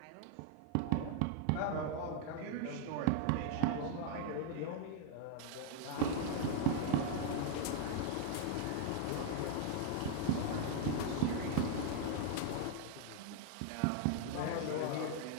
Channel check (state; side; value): different; both; correlation 0.00